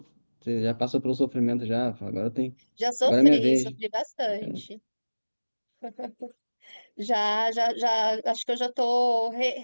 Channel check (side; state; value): both; inverted; correlation -1.00